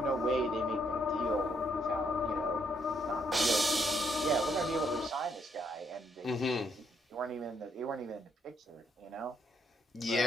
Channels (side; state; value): both; normal; correlation 0.73